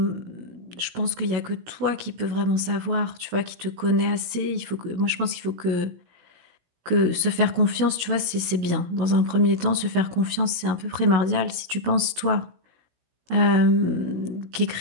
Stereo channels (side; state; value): left; late; 17 ms